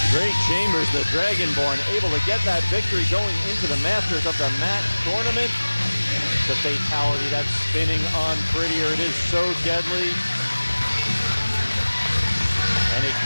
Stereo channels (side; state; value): both; inverted; correlation -1.00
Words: the Dragonborn able to get that victory going into the Masters of the Mat tournament. The fatality, that spinning on Prettier, it is so deadly. And it